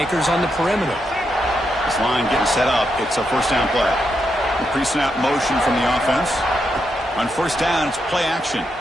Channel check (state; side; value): normal; both; correlation 0.83